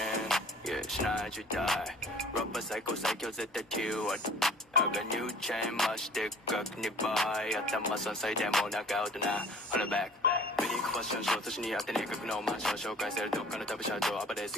Yeah, tonight you die. Rubber psycho set the two. I got new chain, much thick, как не бай. At the muscle side, demo, knock out now. Hold it back. Very question, short, so she at the neck of no man. Show guys, they're talking to the shadow. But they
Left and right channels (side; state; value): both; normal; correlation 0.48